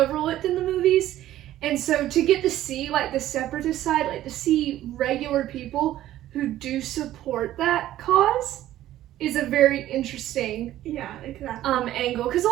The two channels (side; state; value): left; quieter; 13.6 dB